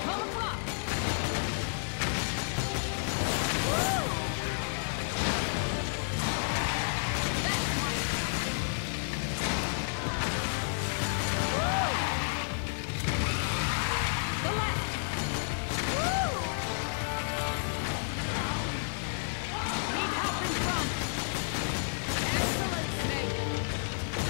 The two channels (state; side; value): silent; right; digital silence